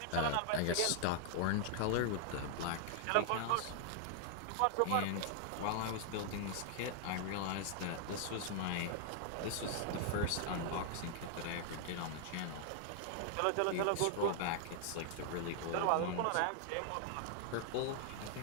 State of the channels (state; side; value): different; both; correlation 0.00